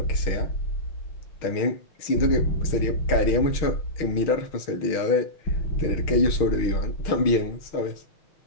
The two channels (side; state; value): right; late; 6.4 ms